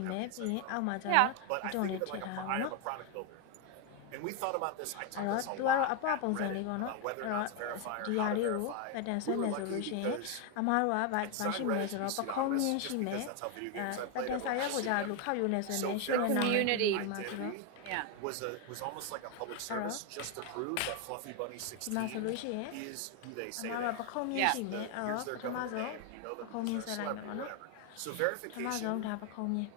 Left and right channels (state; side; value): different; both; correlation 0.01